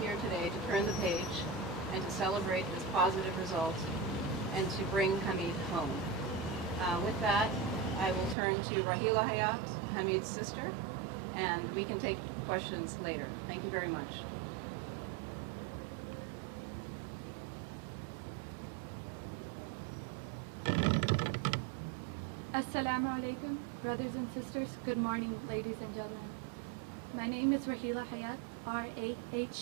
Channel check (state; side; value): drops out; left; at 8.3 s